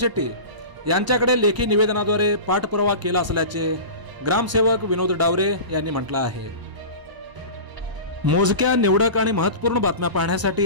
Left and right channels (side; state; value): left; late; 1.0 ms